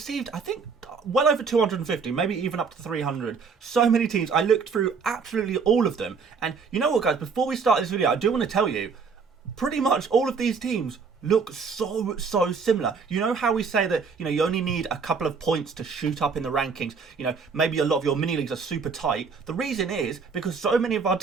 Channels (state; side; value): quieter; left; 5.3 dB